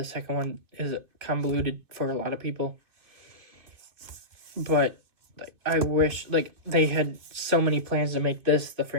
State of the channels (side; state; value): left; late; 2.5 ms